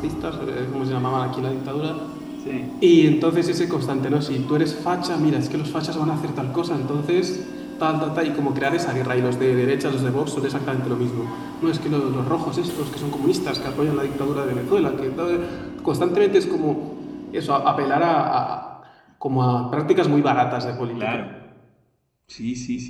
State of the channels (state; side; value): identical; both; correlation 1.00